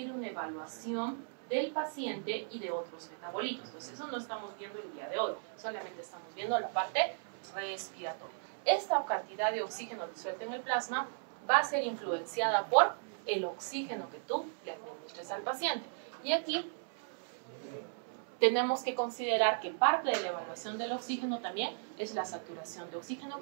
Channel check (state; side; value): silent; left; 54 dB below the other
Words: una evaluación del paciente y de otros metabolitos. Entonces eso no estamos viendo el día de hoy, solamente estamos viendo la parte respiratoria. Esta cantidad de oxígeno disuelto en el plasma va a ser influenciada por el oxígeno que tú le administres al paciente. Y aquí tenemos que considerar que parte de la evaluación del oxígeno también es la saturación de oxígeno,